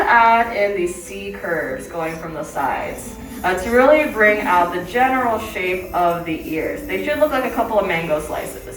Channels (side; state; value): both; identical; correlation 1.00